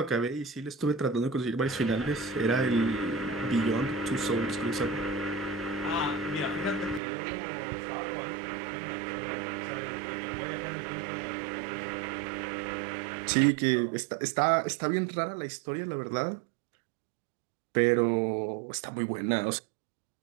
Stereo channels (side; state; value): left; drops out; at 7.0 s